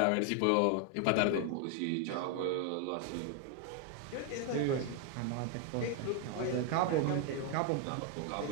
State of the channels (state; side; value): different; both; correlation 0.00